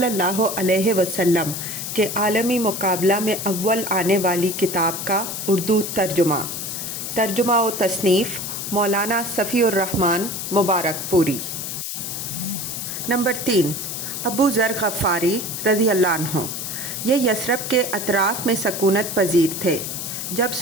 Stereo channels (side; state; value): left; noise; hiss, 5 dB below the sound